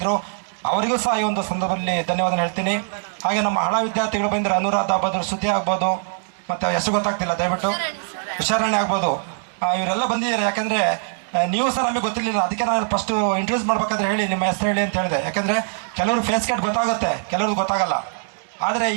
ಅವರಿಗೂ ಸಹ ಈ ಒಂದು ಸಂದರ್ಭದಲ್ಲಿ ಧನ್ಯವಾದ ಹೇಳ್ತೀನಿ. ಹಾಗೆ ನಮ್ಮ ಹಳ ವಿದ್ಯಾರ್ಥಿಗಳು ಬಂದರೆ ಅನುರಾಧ ಆಗ್ಬೋದು, ಶ್ರುತಿ ಆಗ್ಬೋದು, ಮತ್ತು ಹೆಸರು ಗೊತ್ತಾಗ್ತಿಲ್ಲ, ದಯವಿಟ್ಟು ಹುಷಾರಾಣಿ ಆಗ್ಬೋದು, ಇವರೆಲ್ಲ ಬಂದಿದ್ದಾರೆ. ಯಾಕಂದರೆ ನೀವು ಸಹ ನಮಗೆ ಗೊತ್ತಿರಲಿಲ್ಲ, ಅದಕ್ಕೆ ನಾನು ಫಸ್ಟು ಇಂಟ್ರೊಡ್ಯೂಸ್ ಮಾಡ್ಬೇಕಾದ್ರೆ ಹೇಳಿ ನಿಮ್ಮ ಹೆಸರು ಹೇಳಿ ಅಂತ ಹೇಳಿದೆ. ಯಾಕಂದರೆ ಕೆಲವರು ಫೇಸ್ ಕಟ್ ಗೊತ್ತಾಗುತ್ತೆ, ಕೆಲವ್ರಿಗೆ ಗೊತ್ತಾಗಲ್ಲ. ಆದರೆ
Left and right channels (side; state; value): left; silent; digital silence